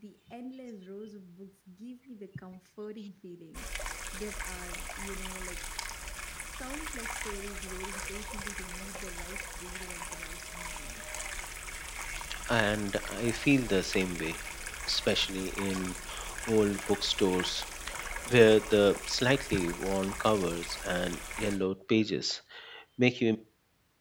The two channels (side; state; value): both; identical; correlation 1.00